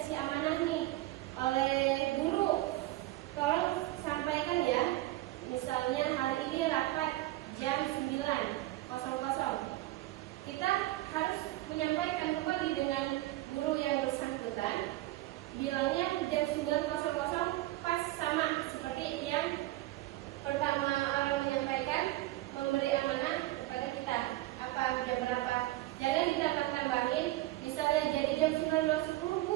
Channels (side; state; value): left; quieter; 17.4 dB